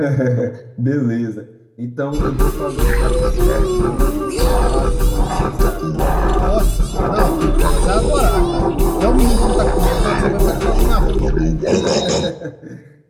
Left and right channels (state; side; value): identical; both; correlation 1.00